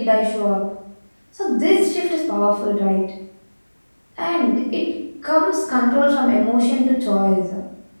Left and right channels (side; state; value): both; inverted; correlation -1.00